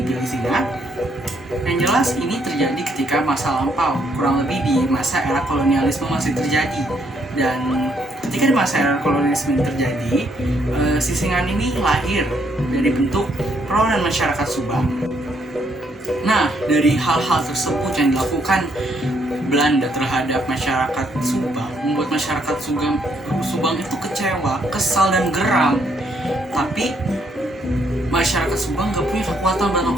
singa? Yang jelas ini terjadi ketika masa lampau, kurang lebih di masa era kolonialisme masih terjadi. Dan ketika di masa era kolonialisme terjadi, sisingan ini lahir dari bentuk perlawanan masyarakat Subang. Nah, dari hal-hal tersebut yang dilakukan Belanda terhadap masyarakat Subang membuat masyarakat Subang itu kecewa, kesal, dan geram. Tapi masyarakat Subang gak punya kekuatan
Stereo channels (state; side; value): normal; both; correlation 0.72